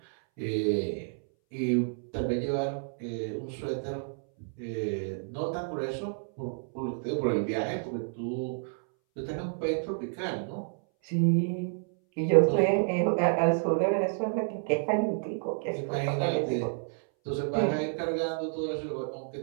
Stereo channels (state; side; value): silent; left; 58 dB below the other